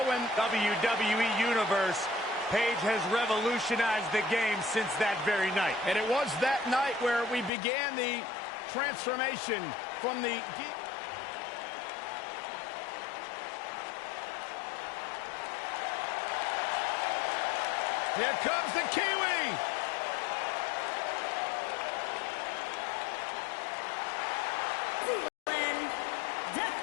when WWE Universe, Paige has revolutionized the game since that very night. And it was that night where we began the transformation from the... Here comes the Kiwi!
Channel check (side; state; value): right; drops out; at 7.5 s